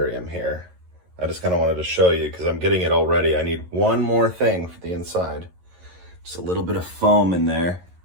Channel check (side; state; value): left; late; 11 ms